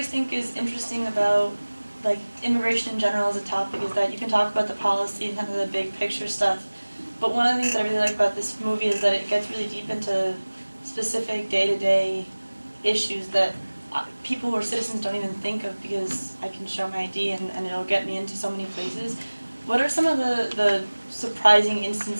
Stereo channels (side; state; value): both; inverted; correlation -1.00